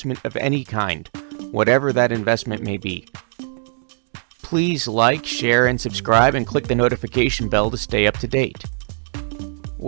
of any kind, whatever that investment may be. Please like, share, and subscribe, and click the notification bell to stay up to date.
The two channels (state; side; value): silent; left; 65 dB below the other